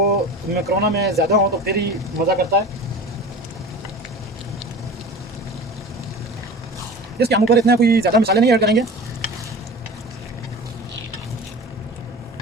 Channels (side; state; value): both; normal; correlation 0.36